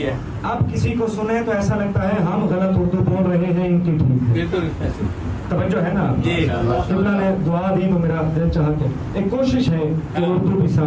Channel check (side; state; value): both; identical; correlation 1.00